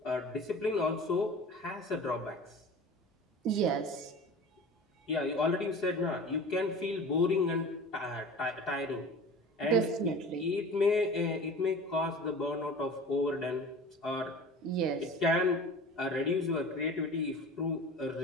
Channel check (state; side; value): normal; both; correlation 0.38